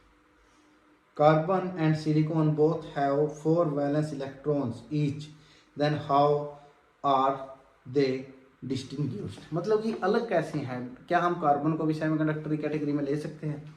Carbon and silicon both have 4 valence electrons each, then how are they distinguished. मतलब कि अलग कैसे हैं, क्या हम कार्बन को भी सेमीकंडक्टर की कैटेगरी में ले सकते हैं?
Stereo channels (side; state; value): both; identical; correlation 1.00